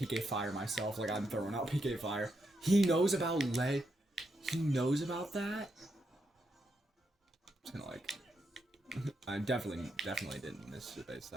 Fire myself, like I'm throwing out PK Fire. He knows about lead. He knows about that? I'm just gonna like... I definitely didn't miss the base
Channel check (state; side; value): normal; both; correlation 0.82